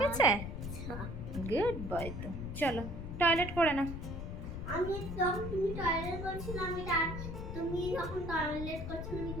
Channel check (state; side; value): noise; left; rumble, 6 dB below the sound